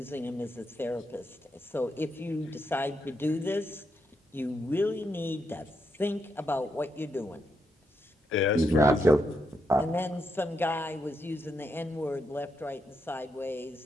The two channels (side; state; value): both; normal; correlation 0.81